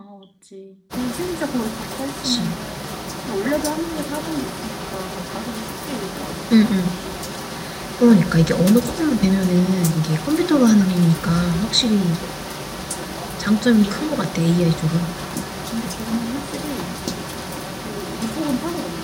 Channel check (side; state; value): both; identical; correlation 1.00